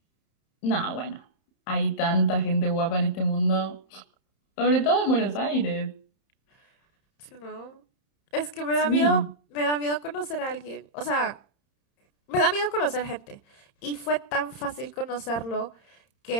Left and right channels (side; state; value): right; late; 31 ms